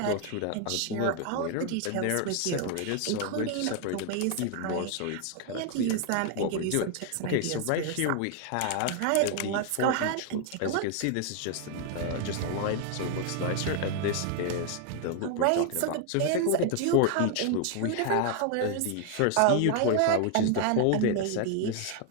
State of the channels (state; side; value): different; both; correlation 0.00